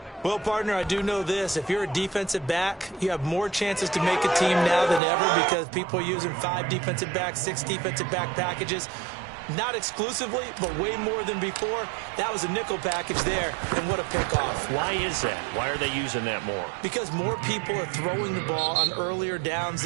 Well, partner, I do know this. If you're a defensive back, you have more chances to make a team now than ever, because people are using 5 defensive backs, 6 defensive back packages. Not exclusively, but way more than before. That was a nickel package there, and what a pickoff. Why is that? Why are they using that more? Because more people are throwing the ball on earlier downs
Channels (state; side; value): drops out; left; at 5.0 s